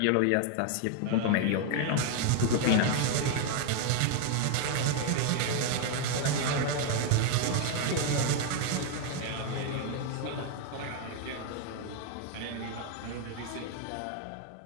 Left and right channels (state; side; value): different; both; correlation 0.01